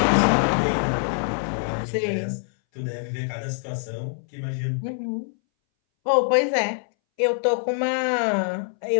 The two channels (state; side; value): silent; right; 61 dB below the other